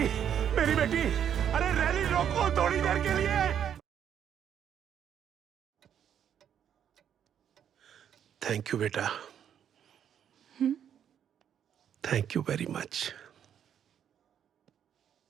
मेरी बेटी, अरे रैली रोको थोड़ी देर के लिए। थैंक यू बेटा, thank you very much.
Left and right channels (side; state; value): left; quieter; 9.1 dB